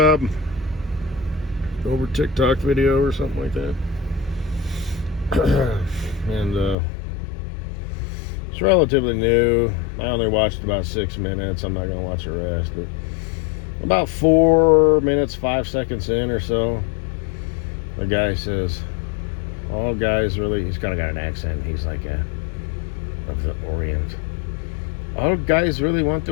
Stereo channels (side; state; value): right; drops out; at 6.8 s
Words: over TikTok video or something like that. And it's relatively new. I only watched about 6 minutes. I'm not going to watch the rest. But about 4 minutes, 5 seconds in or so, the guy says, all guys really, he's kind of got an accent. He's like of the Orient. All guys really want